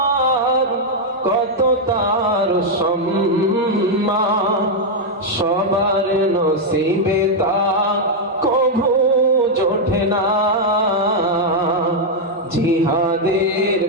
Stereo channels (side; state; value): both; normal; correlation -0.01